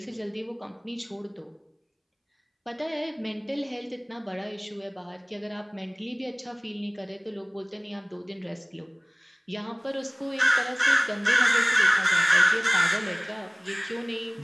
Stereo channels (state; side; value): identical; both; correlation 1.00